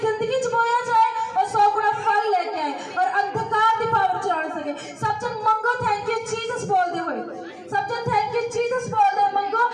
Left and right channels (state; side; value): identical; both; correlation 1.00